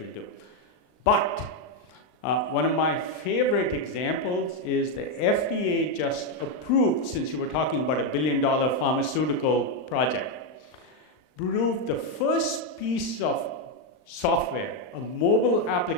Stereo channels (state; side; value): late; right; 39 ms